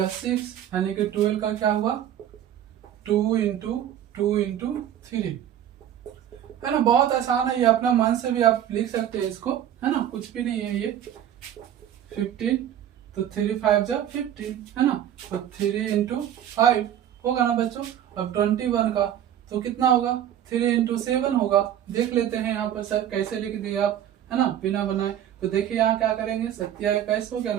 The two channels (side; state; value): left; quieter; 10.7 dB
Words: 6, यानी कि 12 का क्या हुआ 2 इंटू 3, है ना, बहुत आसान है ये, अपना मन से भी आप लिख सकते हैं इसको, है ना, कुछ भी नहीं है ये। 15 तो 3 5 जा 15, है ना, तो 3 इंटू 5 होगा ना बच्चों। अब 21 का तो कितना होगा 3 इंटू 7 होगा। देख लेते हैं यहाँ पर सर कैसे लिख दिए आप, है ना, बिना बनाए। तो देखिए यहाँ क्या करेंगे, 27 हो गया